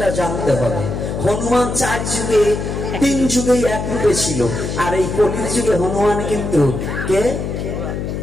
জানতে হবে। হনুমান 4 যুগে 3 যুগেই এক রূপে ছিল, আর এই কলির যুগে হনুমান কিন্তু কে?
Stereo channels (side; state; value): left; noise; hum, 4 dB below the sound